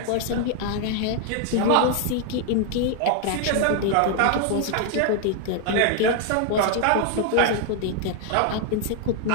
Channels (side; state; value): both; different; correlation 0.00